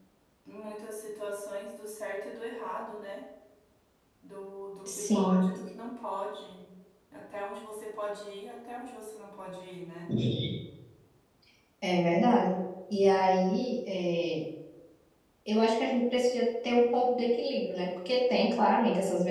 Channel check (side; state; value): both; identical; correlation 1.00